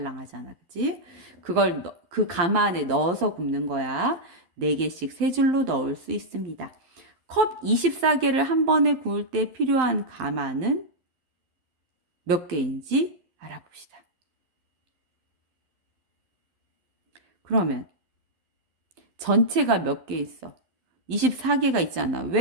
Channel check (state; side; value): late; left; 12 ms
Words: 그치? 그걸 그 가마 안에 넣어서 굽는 거야. 4개씩 3줄로 넣을 수 있습니다. 컵 24개를 한 번에 구울 때 필요한 가마는 몇 개인지 알아봅시다. 그러면 전체가 몇 개 있어? 24개가 있잖아.